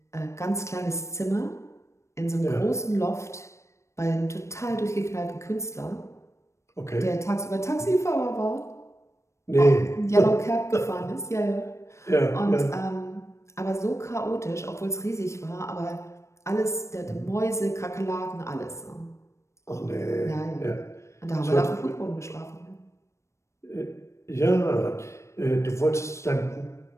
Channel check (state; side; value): late; right; 0.14 ms